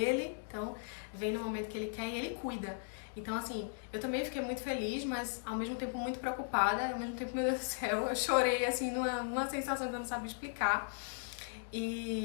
então vem no momento que ele quer e ele cuida. Então, assim, eu também fiquei muito feliz, mas ao mesmo tempo muito preocupada, ao mesmo tempo, meu Deus do céu, eu chorei, assim, numa sensação que eu não sabia explicar.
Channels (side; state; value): right; silent; digital silence